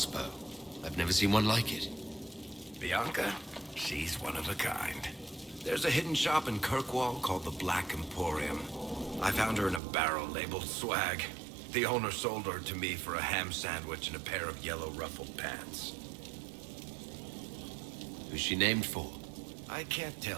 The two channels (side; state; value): left; drops out; at 9.8 s